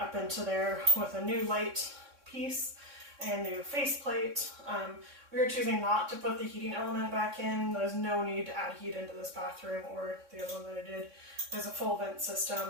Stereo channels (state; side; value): late; left; 3.6 ms